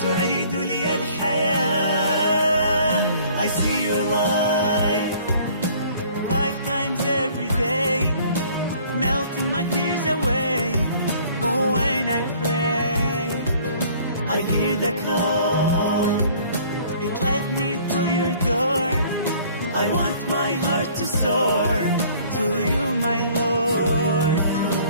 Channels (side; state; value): both; inverted; correlation -0.55